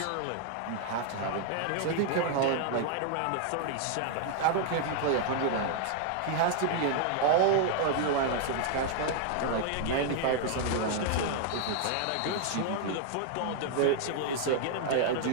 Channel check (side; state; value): both; different; correlation 0.00